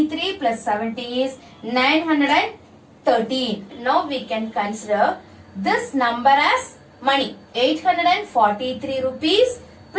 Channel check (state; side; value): identical; both; correlation 1.00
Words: plus 70 is 913. Now we can consider this number as money. 843 rupees